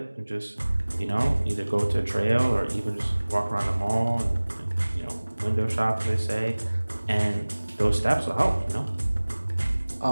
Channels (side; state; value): both; inverted; correlation -1.00